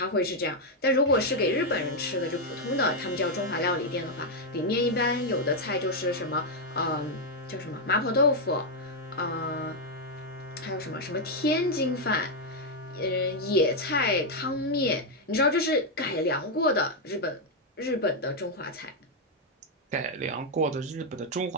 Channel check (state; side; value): normal; both; correlation 0.01